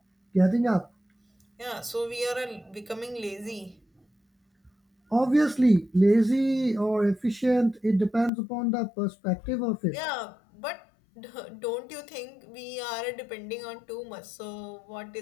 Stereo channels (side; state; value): right; drops out; at 8.3 s